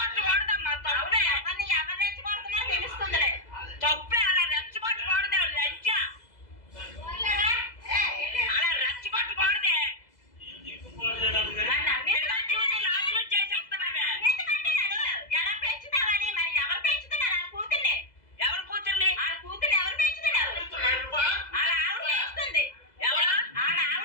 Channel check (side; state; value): right; late; 2.0 ms